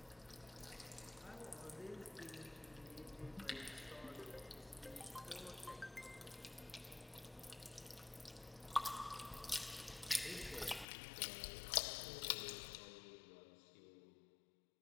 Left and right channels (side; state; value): right; drops out; at 10.9 s